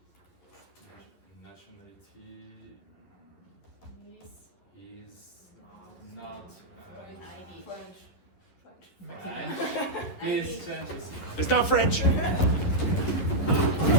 Please change the seat. It's not French.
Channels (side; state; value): right; late; 11 ms